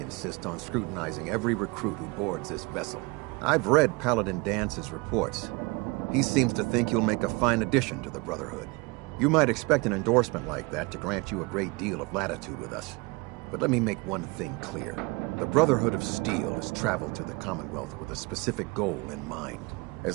on scrutinizing every recruit who boards this vessel. I've read Paladin Dance's reports. He seems to think you'll make a fine addition to the Brotherhood. You might expect an endorsement like that to grant you a great deal of latitude with us. But let me make one thing clear. The Brotherhood of Steel has traveled to the Commonwealth with a specific goal in mind. As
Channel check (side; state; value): left; quieter; 26.6 dB